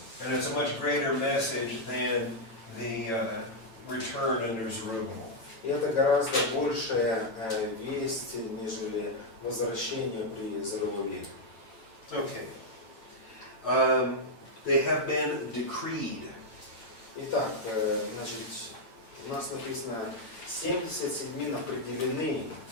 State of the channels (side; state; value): right; late; 9.0 ms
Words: And it's a much greater message than the return under Zerubbabel. И это гораздо большая весть, нежели возвращение при Зоровавеле. Okay. They have been decreed. Итак, значит, у нас написано 70 седьмин определены,